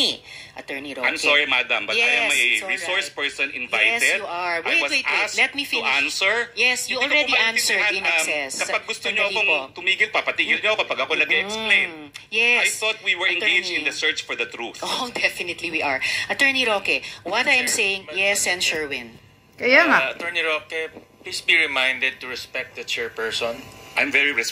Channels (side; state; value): both; identical; correlation 1.00